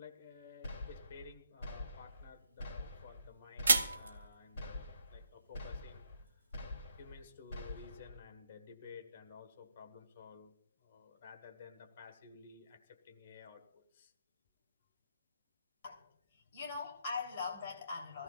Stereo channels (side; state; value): both; inverted; correlation -0.80